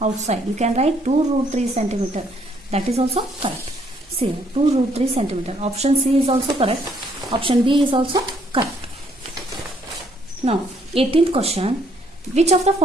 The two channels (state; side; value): normal; both; correlation 0.68